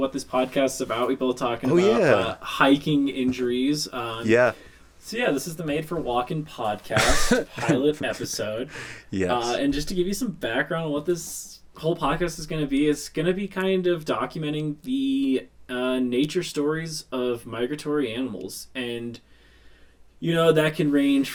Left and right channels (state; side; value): identical; both; correlation 1.00